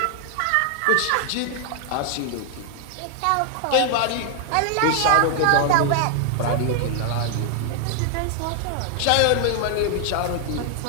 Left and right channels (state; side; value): different; both; correlation 0.00